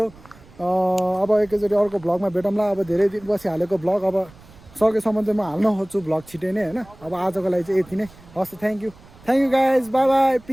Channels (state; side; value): noise; right; rumble, 24 dB below the sound